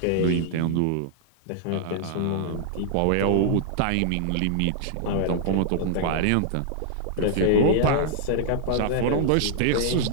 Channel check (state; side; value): different; both; correlation -0.01